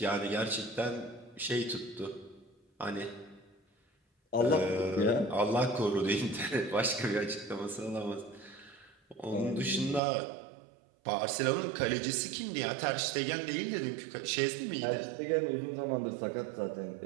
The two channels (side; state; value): left; drops out; at 10.0 s